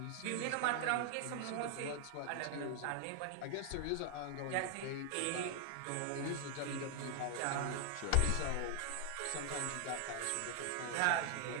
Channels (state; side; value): different; both; correlation 0.00